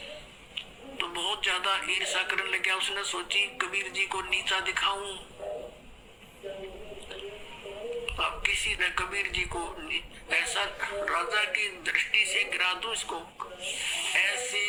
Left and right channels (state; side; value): identical; both; correlation 1.00